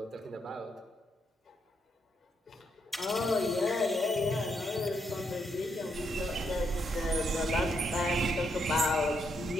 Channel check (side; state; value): both; normal; correlation 0.77